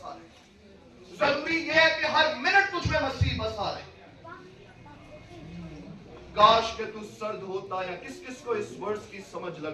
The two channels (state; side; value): identical; both; correlation 1.00